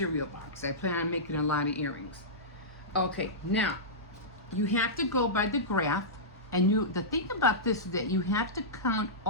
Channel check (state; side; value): normal; both; correlation -0.16